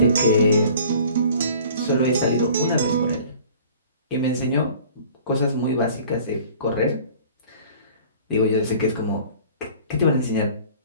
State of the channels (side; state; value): both; inverted; correlation -0.49